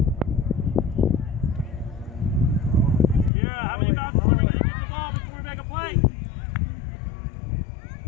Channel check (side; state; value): right; drops out; at 3.3 s